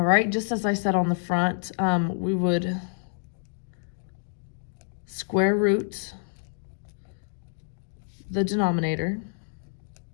right, just as I said on the front, we would square root the denominator,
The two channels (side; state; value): right; silent; digital silence